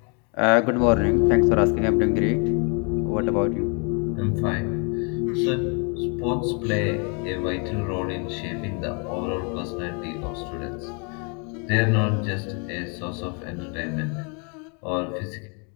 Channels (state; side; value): quieter; right; 36.6 dB